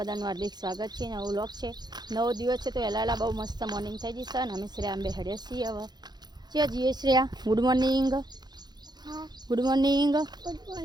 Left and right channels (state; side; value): late; left; 0.20 ms